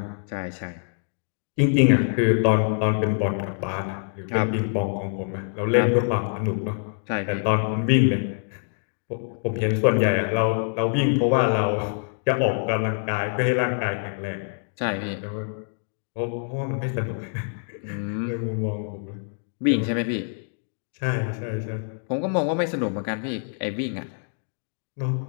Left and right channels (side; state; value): right; silent; digital silence